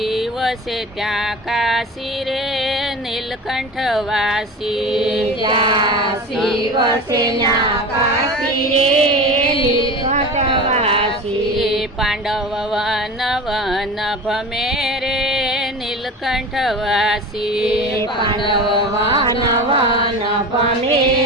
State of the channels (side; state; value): both; normal; correlation 0.31